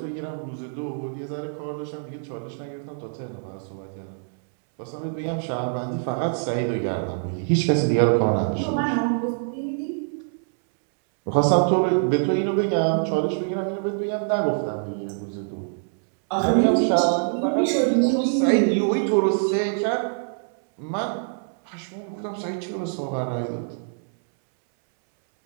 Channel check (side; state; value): left; silent; 62 dB below the other